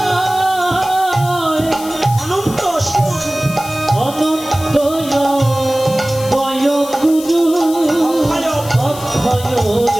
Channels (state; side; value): noise; left; hiss, 14 dB below the sound